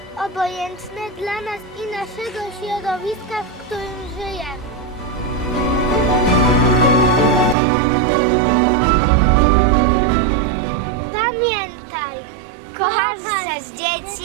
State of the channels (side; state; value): left; drops out; at 7.6 s